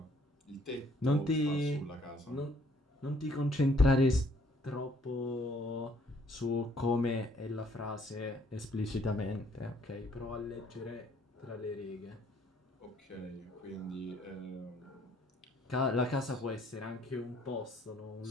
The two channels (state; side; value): normal; both; correlation 0.63